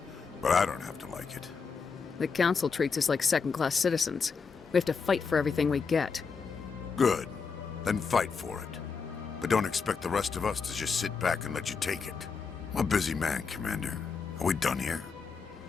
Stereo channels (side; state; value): right; quieter; 5.3 dB